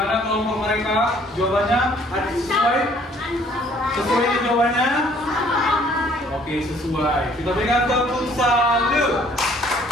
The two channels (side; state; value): both; normal; correlation 0.59